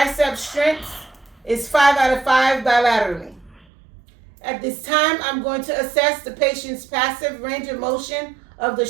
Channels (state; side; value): drops out; left; at 3.7 s